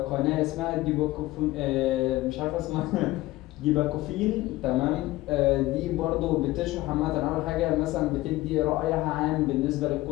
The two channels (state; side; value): quieter; right; 18.0 dB